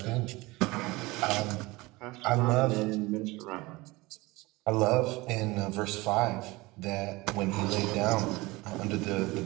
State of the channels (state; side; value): quieter; left; 22.1 dB